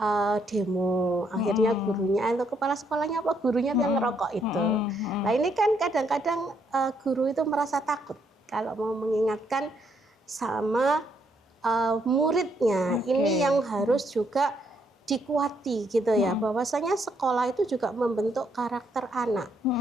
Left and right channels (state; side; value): normal; both; correlation 0.73